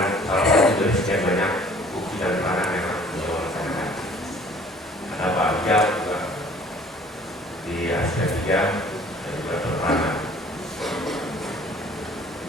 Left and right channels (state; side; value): normal; both; correlation 0.52